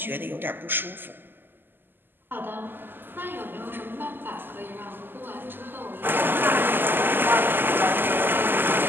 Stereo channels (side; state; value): left; late; 0.094 ms